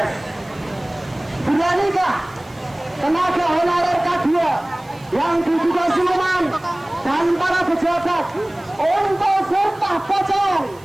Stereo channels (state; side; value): noise; right; hiss, 28 dB below the sound